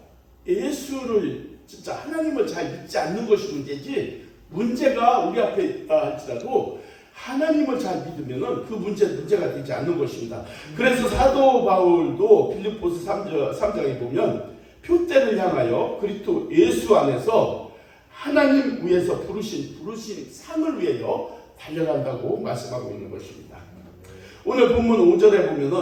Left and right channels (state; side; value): identical; both; correlation 1.00